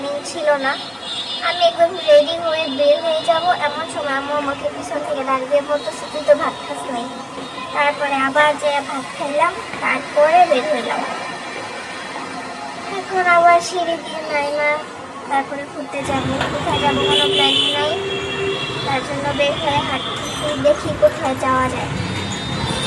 ছিল না। আমি একদম রেডি হয়ে বের হয়ে যাব, এমন সময় আম্মু আমাকে পিছন থেকে দাঁড়িয়ে বলতেছে তুই তো ভাত খাস নাই। তারপরে আবার যে ভাত খাইলাম, তারপরে বের হইলাম। এখন আবার সিঁড়ি দিয়ে নাইমা তারপরে ঘুরতে যাব। কোথায় যাবো কোনো প্ল্যানিং নাই, তার জন্য বের হয়ে হাঁটতেছি, দেখি কোথায় যাওয়া যায়।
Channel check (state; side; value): identical; both; correlation 1.00